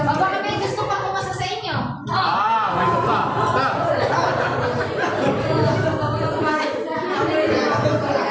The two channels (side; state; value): both; identical; correlation 1.00